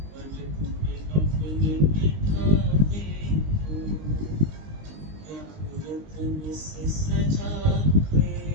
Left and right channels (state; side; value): late; left; 19 ms